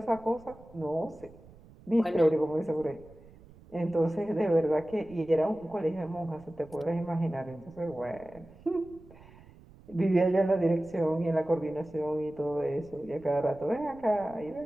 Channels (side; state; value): right; noise; rumble, 22 dB below the sound